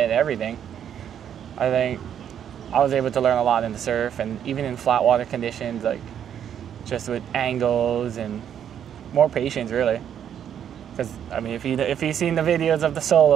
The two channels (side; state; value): left; quieter; 9.2 dB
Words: and everything. I think I was able to learn a lot in the surf and even in flat water conditions, like just with angles and more patience really. Because I mean, if you've seen the videos of the